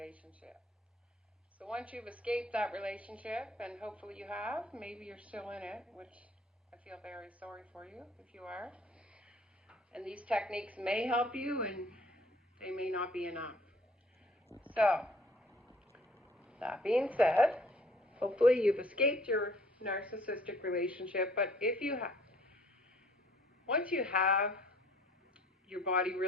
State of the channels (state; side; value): normal; both; correlation 0.57